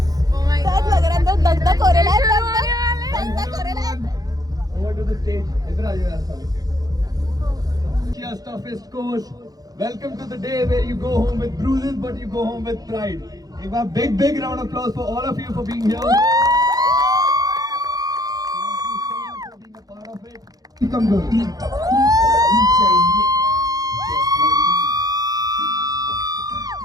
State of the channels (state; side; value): late; left; 0.18 ms